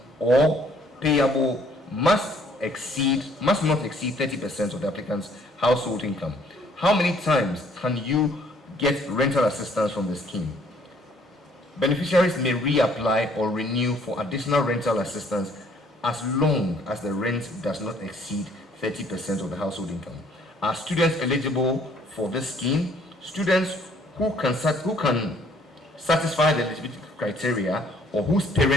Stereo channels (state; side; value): normal; both; correlation 0.61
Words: or payable must not exceed 30% of the applicant's household income. How many times can you get rental assistance from the scheme? Beneficiaries may reapply or renew for additional rental assistance as long as the rent does not exceed 30% of the household income. Are students eligible for this scheme? Students who can satisfy the eligibility criteria or whose